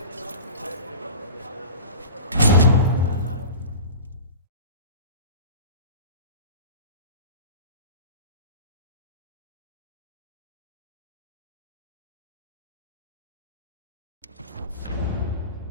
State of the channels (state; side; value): inverted; both; correlation -0.35